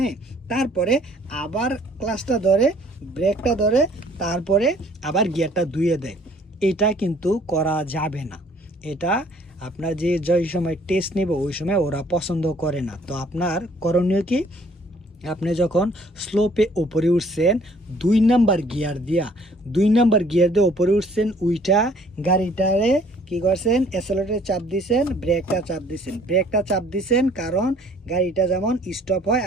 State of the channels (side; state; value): both; normal; correlation 0.58